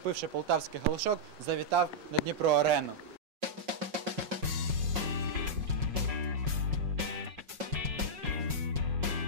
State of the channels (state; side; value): late; left; 5.5 ms